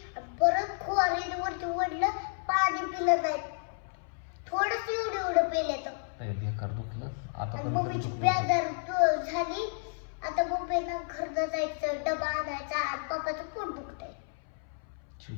परत खोरीने वरती ओढलं, पाणी पिलं नाही. थोडस एवढं पिलं तर बेकार दुखलं. आता मम्मीची बेजार झाली. आता मम्मीला घरनं जायचं, डबा आणायचा आणि पप्पाचं पोट दुखतंय.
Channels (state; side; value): silent; right; 57 dB below the other